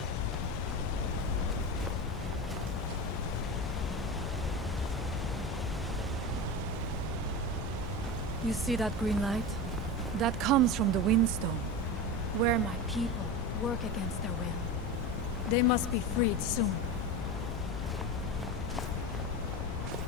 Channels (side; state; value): left; noise; rumble, 6 dB below the sound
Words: You see that green light? That comes from the Windstone, where my people work against their will. They must be freed soon.